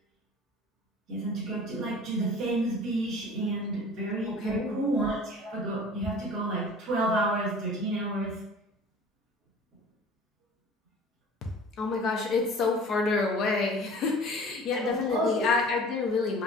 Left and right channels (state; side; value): normal; both; correlation 0.44